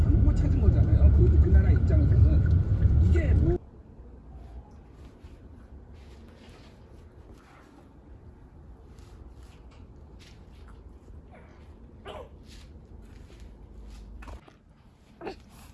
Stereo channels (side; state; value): both; identical; correlation 1.00